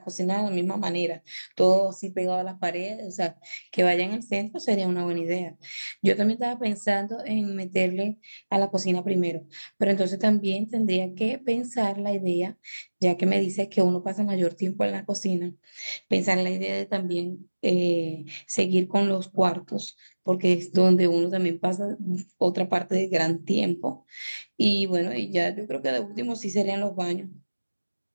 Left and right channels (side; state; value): both; inverted; correlation -1.00